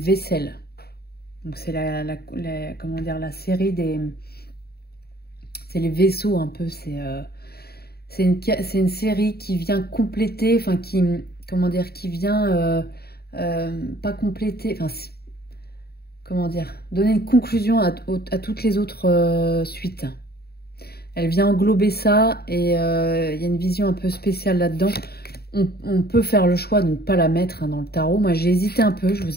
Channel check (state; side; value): late; right; 0.46 ms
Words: Donc c'est comment dire, la série des... C'est les vaisseaux un peu. C'est une série qui vient compléter, enfin qui... Comment dire, qui vient... pas compléter... Enfin, comment dire, donner une conclusion à toutes les autres suites. Elle vient englober ça et il y a une vision un peu spéciale là-dedans. On peut faire le choix de ne pas la mettre hein, dans le tarot. Moi, j'ai hésité un peu, je